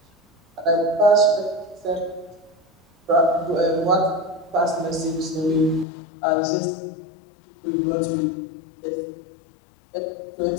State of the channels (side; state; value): right; drops out; at 5.9 s